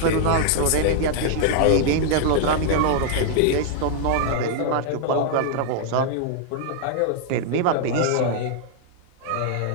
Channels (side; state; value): both; different; correlation 0.00